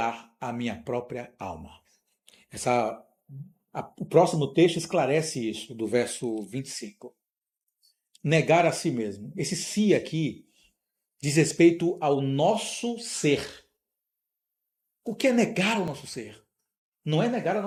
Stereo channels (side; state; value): both; identical; correlation 1.00